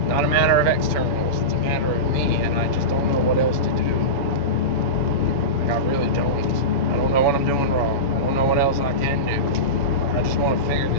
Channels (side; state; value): right; late; 7.1 ms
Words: Not a matter of externals, it's a matter of me, and I just don't know what else to do. Like, I really don't. I don't know what I'm doing wrong. I don't know what else I can do. I just want to figure